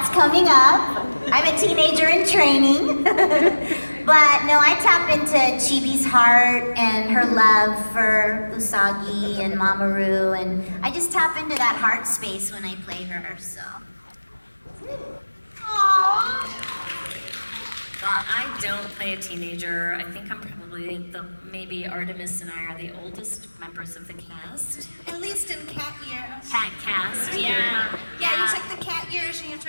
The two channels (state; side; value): inverted; both; correlation -1.00